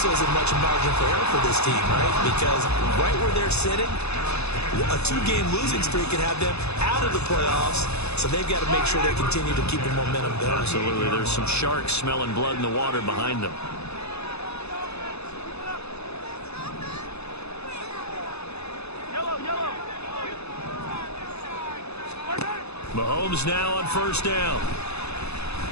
isn't much margin for error for this team, right? Because right where they're sitting, a 2-game losing streak can have them out of the playoffs, so they've got to make sure they continue to keep the momentum going. Absolutely. There's some sharks smelling blood in the water behind them. Yellow. Mahomes now on first down.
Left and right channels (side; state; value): right; late; 0.80 ms